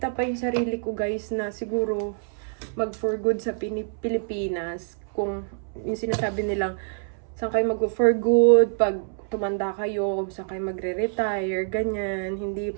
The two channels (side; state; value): left; silent; 61 dB below the other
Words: pa yung sarili ko, guys, na siguro mag-for good sa Pilipinas. Kung yung sinasabi nilang, saan kayo mag-for good, pag tumanda kayo, kung saan kayo magre-retire, ganyan, hindi